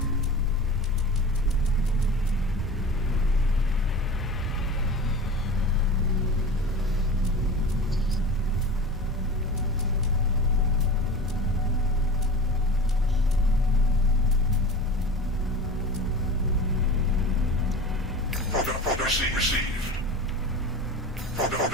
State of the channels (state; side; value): normal; both; correlation 0.33